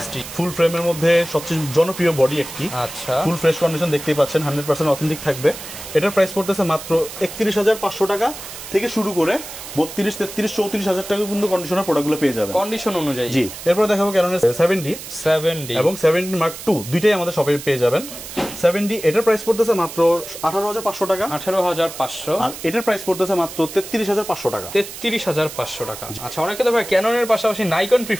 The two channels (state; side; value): noise; right; hiss, 12 dB below the sound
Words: ফুল ফ্রেমের মধ্যে সবচেয়ে জনপ্রিয় বডি একটি। আচ্ছা, ফুল ফ্রেশ কন্ডিশন দেখতেই পাচ্ছেন, 100% অথেন্টিক থাকবে। এটার প্রাইস পড়তেছে মাত্র 31,500 টাকা থেকে শুরু করে 32, 33, 34,000 টাকা পর্যন্ত কন্ডিশনার প্রোডাক্টগুলো পেয়ে যাবেন কন্ডিশন অনুযায়ী। জি, এরপর দেখাবো ক্যাননের 7D এবং 7D Mark II দুইটাই আমাদের শপে পেয়ে যাবেন। 7D এটার প্রাইস পড়তেছে মাত্র 18,500 টাকা, 18,500। আর এটার প্রাইস পড়তেছে মাত্র 33,500 টাকা, 33,500 টাকা। আচ্ছা, অনেকে তো ভাই ক্যাননের পাশাপাশি নাইকন